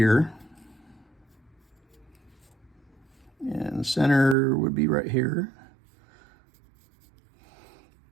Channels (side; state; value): left; drops out; at 4.4 s